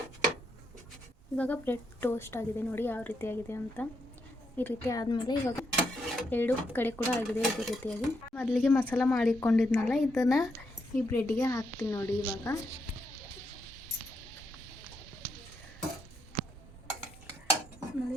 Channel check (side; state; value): both; normal; correlation 0.79